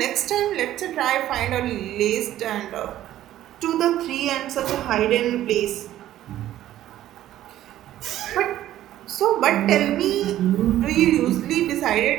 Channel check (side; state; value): left; quieter; 13.1 dB